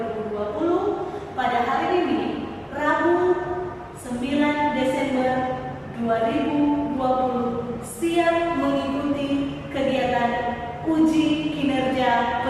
Pada hari ini, Rabu 9 Desember 2020, siap mengikuti kegiatan uji kinerja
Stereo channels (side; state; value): both; identical; correlation 1.00